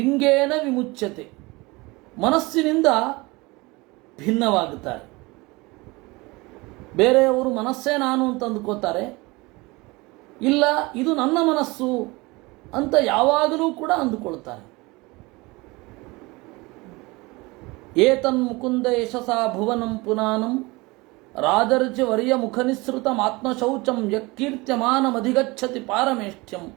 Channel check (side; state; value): left; quieter; 23.6 dB